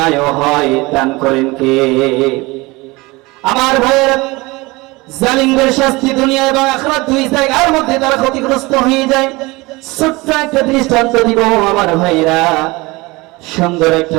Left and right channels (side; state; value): left; quieter; 22.9 dB